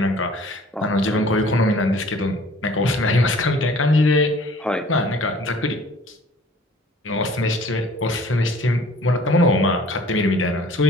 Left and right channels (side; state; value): both; normal; correlation 0.51